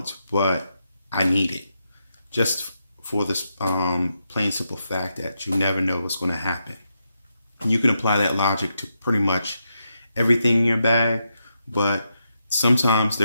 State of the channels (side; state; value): both; inverted; correlation -0.84